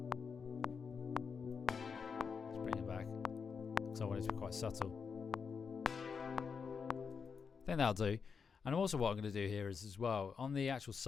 So I want it to be quite subtle. I think that'll do. And also what I'm going to do here is as well, on the actual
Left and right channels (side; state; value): right; quieter; 5.8 dB